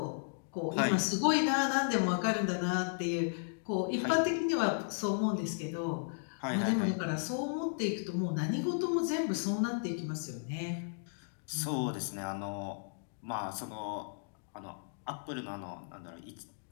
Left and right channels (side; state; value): right; silent; digital silence